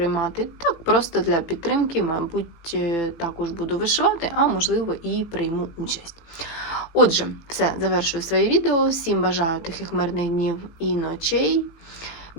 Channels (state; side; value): late; right; 18 ms